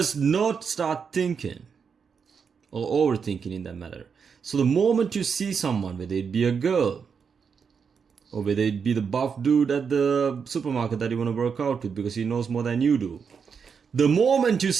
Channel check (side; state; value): left; quieter; 6.2 dB